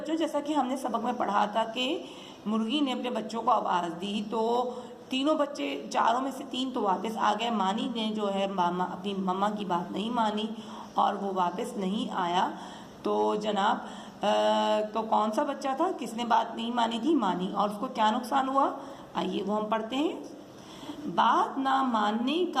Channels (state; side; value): identical; both; correlation 1.00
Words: जैसा कि हमने सबक में पढ़ा था कि मुर्गी ने अपने बच्चों को आवाज़ दी तो तीनों बच्चे, चारों में से 3 तो वापस आ गए। मानी ने जो है अपनी मम्मा की बात नहीं मानी और वो वापस नहीं आया। तो जनाब तो कौन सा बच्चा था किसने बात नहीं मानी थी? मानी। और उसको क्या नुकसान हुआ? आइए वो हम पढ़ते हैं। बात ना मानने